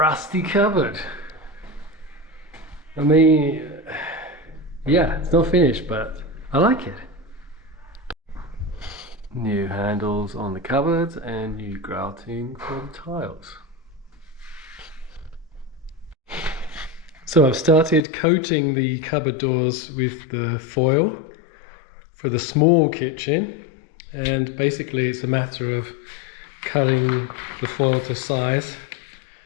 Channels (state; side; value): drops out; right; at 18.0 s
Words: rusty cupboard. I mean, yeah, it's not finished, but I like it. New handles on the cupboards and new grouting for the tiles. So I've started coating the cupboard doors with the foil for the small kitchen, and basically it's a matter of cutting the foil to size